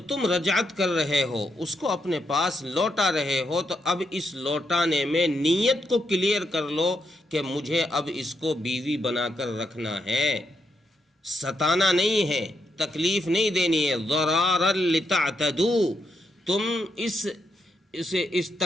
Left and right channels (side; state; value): both; normal; correlation 0.80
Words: تم رجعت کر رہے ہو، اس کو اپنے پاس لوٹا رہے ہو، تو اب اس لوٹانے میں نیت کو کلیئر کر لو کہ مجھے اب اس کو بیوی بنا کر رکھنا ہے، ستانا نہیں ہے، تکلیف نہیں دینی ہے۔ ضرارا لتعتدوا، تم اس